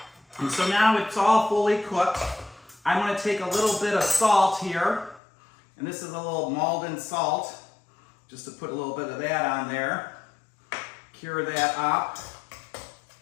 so now it's all fully cooked. I'm going to take a little bit of salt here. And this is a little Malden salt, just to put a little bit of that on there. Cure that up.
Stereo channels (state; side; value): drops out; right; at 5.2 s